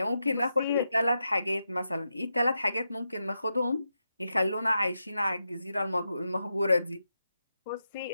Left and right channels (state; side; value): inverted; both; correlation -0.87